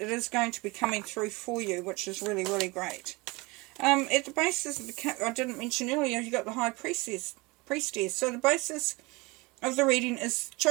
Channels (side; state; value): left; quieter; 24.6 dB